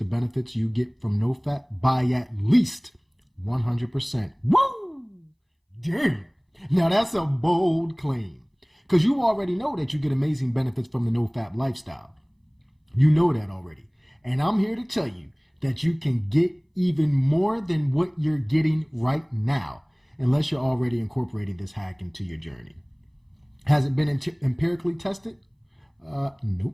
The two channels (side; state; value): both; identical; correlation 1.00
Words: benefits you get from Nofap by at least 100%. Woo! Damn! Now that's a bold claim. Because you already know that you get amazing benefits from the Nofap lifestyle. You know that already. And I'm here to tell you that you can get even more than what you're getting right now, unless you're already incorporating this hack into your journey. Has it been empirically tested?